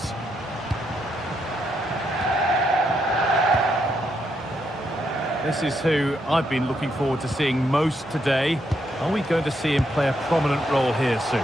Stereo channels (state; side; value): normal; both; correlation 0.78